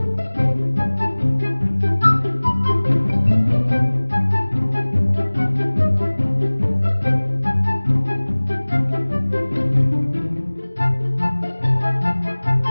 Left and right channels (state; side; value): inverted; both; correlation -1.00